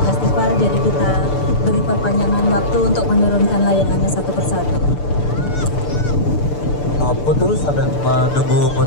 Festival, jadi kita beri perpanjangan waktu untuk menurunkan layangannya satu persatu. Putu sambil menunggu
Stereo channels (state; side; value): late; right; 6.8 ms